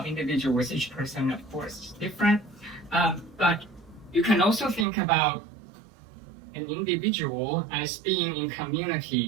individuals. Each person, of course, is different. But you can also think about an individual as being in community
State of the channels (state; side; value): drops out; left; at 4.9 s